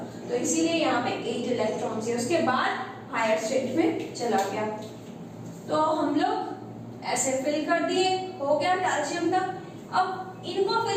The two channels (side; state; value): both; identical; correlation 1.00